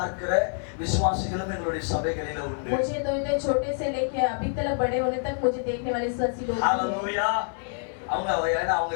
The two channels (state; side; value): silent; right; 60 dB below the other